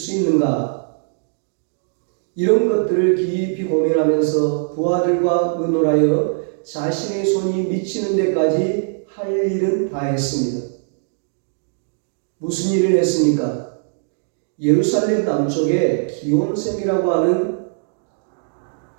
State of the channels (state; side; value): silent; left; digital silence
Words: 있는가? 이런 것들을 깊이 고민하면서 부하들과 의논하여 자신의 손이 미치는 데까지 할 일은 다 했습니다. 무슨 일을 했습니까? 예루살렘 남쪽에 기온샘이라고 하는